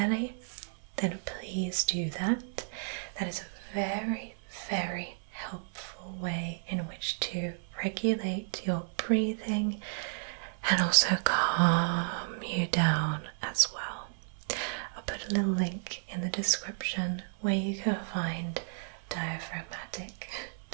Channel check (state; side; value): silent; left; 56 dB below the other